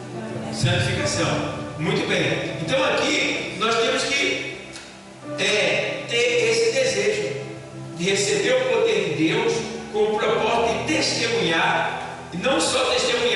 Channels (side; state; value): both; identical; correlation 1.00